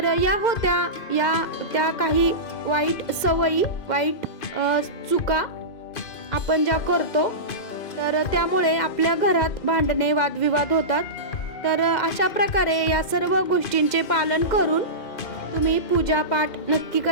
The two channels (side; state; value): right; late; 2.1 ms